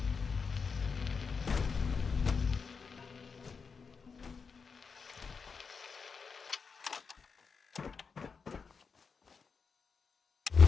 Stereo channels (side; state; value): right; quieter; 5.4 dB